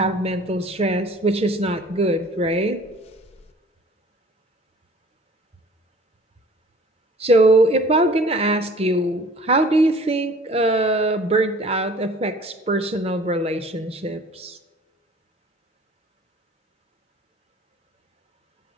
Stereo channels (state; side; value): normal; both; correlation 0.50